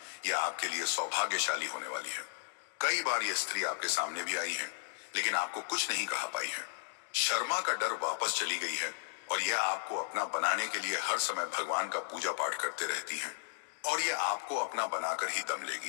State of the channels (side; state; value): right; silent; digital silence